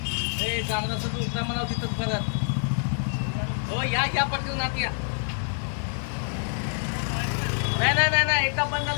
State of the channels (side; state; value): right; silent; digital silence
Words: जाणार असं तू म्हणाव तिथंच परत हो या पटकन नात या नाही एकदा बंद